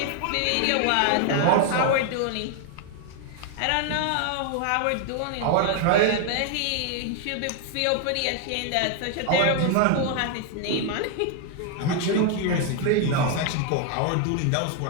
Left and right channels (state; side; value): different; both; correlation 0.00